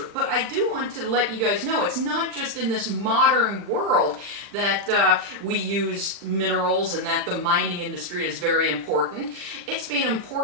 But I do want to let you guys know it's not just in this modern world that we use minerals and that the mining industry is very important. It's been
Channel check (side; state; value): left; late; 40 ms